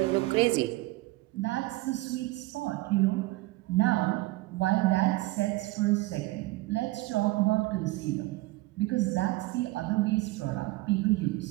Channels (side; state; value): left; quieter; 20.2 dB